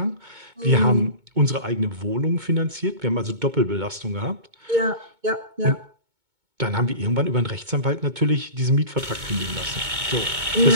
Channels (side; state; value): left; late; 2.2 ms